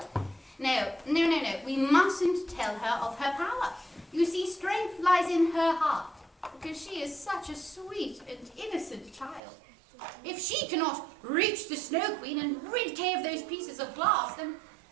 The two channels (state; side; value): drops out; left; at 9.4 s